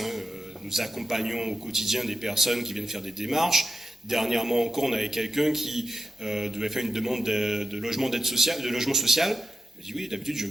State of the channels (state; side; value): normal; both; correlation 0.90